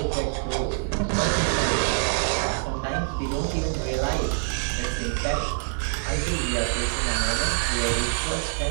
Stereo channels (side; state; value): left; silent; digital silence